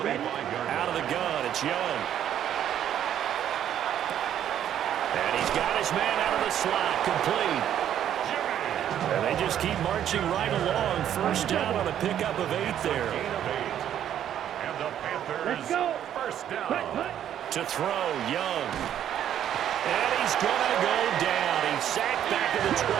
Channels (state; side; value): quieter; left; 10.4 dB